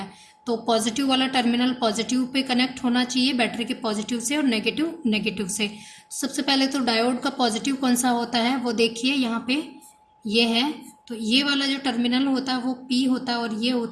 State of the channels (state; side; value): identical; both; correlation 1.00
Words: तो पॉजिटिव वाला टर्मिनल पॉजिटिव पे कनेक्ट होना चाहिए बैटरी के पॉजिटिव से, और नेगेटिव नेगेटिव से। सबसे पहले तो डायोड का पॉजिटिव कौन सा होता है वो देखिए, यहाँ पे ये है। तो ये वाला जो टर्मिनल होता है वो P होता है और ये